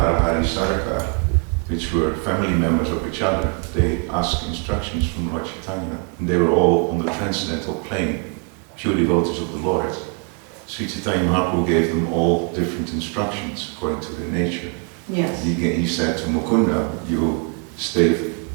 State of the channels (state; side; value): quieter; left; 39.6 dB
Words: Sarkar, which were family members of each other. They asked instructions from Lord Chaitanya, and they were all on the transcendental plane, pure devotees of the Lord. Sri Chaitanya Mahaprabhu gave them all different instructions according to their nature. Yes. He said to Mukunda, you stay